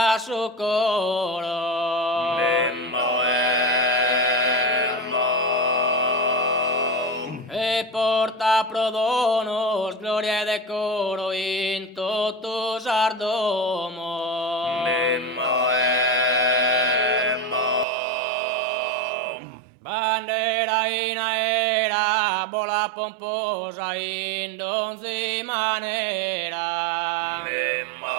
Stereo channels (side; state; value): left; drops out; at 17.9 s